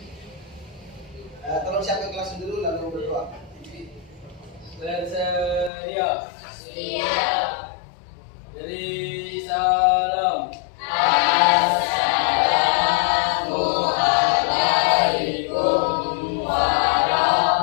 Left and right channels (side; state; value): right; drops out; at 5.7 s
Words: Tolong siapa yang kelas dulu lalu berdoa. Bersedia. Siap. Beri salam. Assalamualaikum